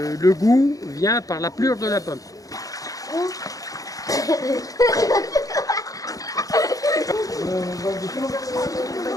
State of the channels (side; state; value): right; late; 0.17 ms